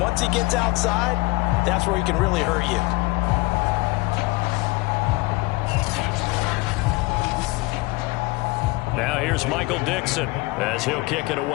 he gets outside, that's where he can really hurt you. Now here's Michael Dixon as he'll kick it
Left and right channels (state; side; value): quieter; right; 23.3 dB